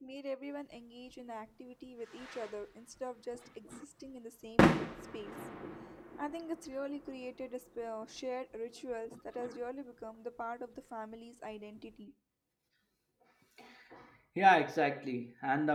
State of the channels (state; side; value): identical; both; correlation 1.00